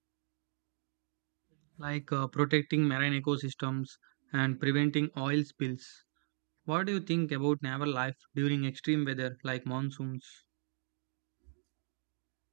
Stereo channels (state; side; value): silent; left; 53 dB below the other